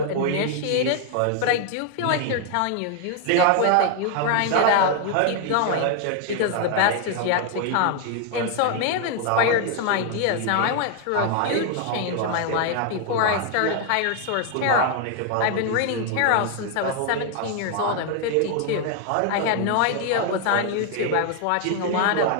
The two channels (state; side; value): different; both; correlation 0.00